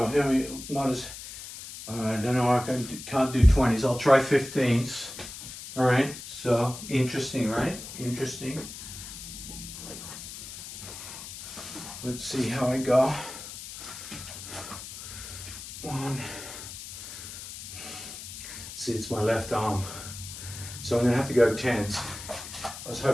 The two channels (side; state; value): left; noise; hiss, 11 dB below the sound